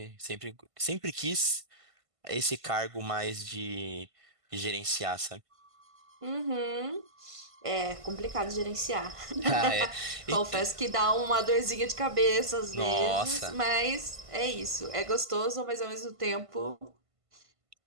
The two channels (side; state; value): left; late; 1.5 ms